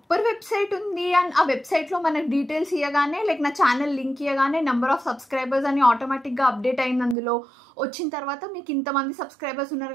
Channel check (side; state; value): left; drops out; at 7.2 s